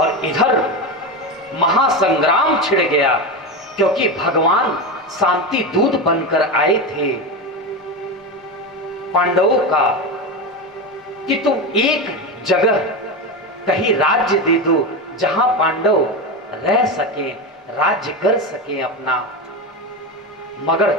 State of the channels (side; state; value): both; normal; correlation 0.18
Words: इधर महासंग्राम छिड़ गया, क्योंकि भगवान शांति दूत बनकर आए थे पांडवों का कि तुम एक जगह कहीं राज्य दे दो जहां पांडव रह सके, राज्य कर सके अपना। मगर